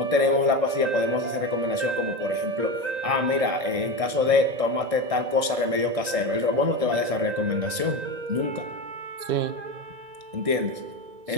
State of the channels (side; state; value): left; late; 1.6 ms